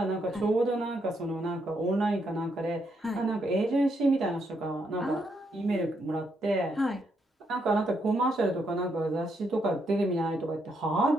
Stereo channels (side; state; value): both; normal; correlation 0.77